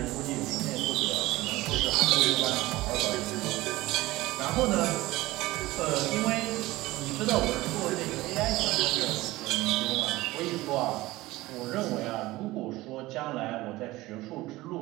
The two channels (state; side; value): quieter; left; 18.7 dB